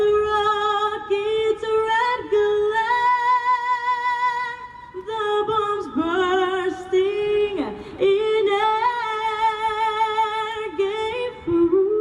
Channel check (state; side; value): identical; both; correlation 1.00